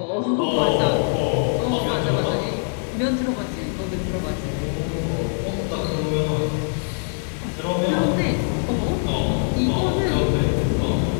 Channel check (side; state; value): right; silent; 64 dB below the other